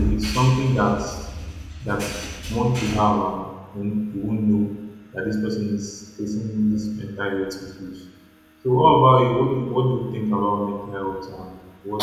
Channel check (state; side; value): identical; both; correlation 1.00